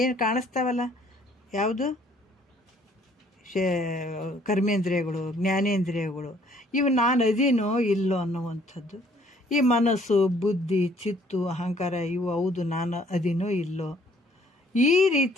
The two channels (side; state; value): both; normal; correlation 0.61